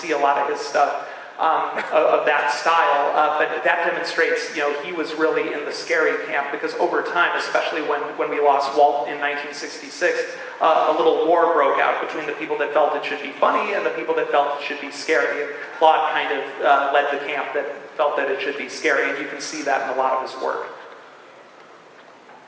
a lot of his stuff of that style, but that demonstrates, he was really in the scary camp because over time, especially when we lost Walt in 1966, a little war broke out between the people that felt it should be funny and the people that felt it should be scary. And Claude kind of led the camp that felt that it should be scary, and you can see that in a lot of his work.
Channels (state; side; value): identical; both; correlation 1.00